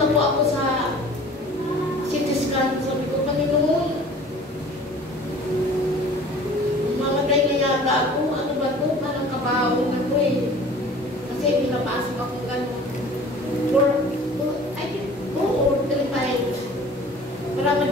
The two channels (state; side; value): normal; both; correlation 0.46